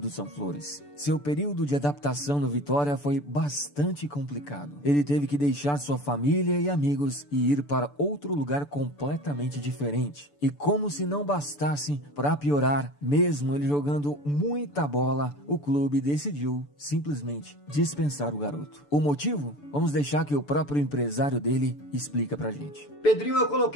são flores. Seu período de adaptação no Vitória foi bastante complicado. Ele teve que deixar sua família e amigos e ir para outro lugar completamente diferente. E como se não bastasse, para piorar, mesmo ele jogando muita bola, o clube decidiu simplesmente dispensar o garoto. O motivo? Vamos deixar que o próprio empresário dele explica pra gente. Pedrinho eu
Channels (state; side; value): late; right; 6.9 ms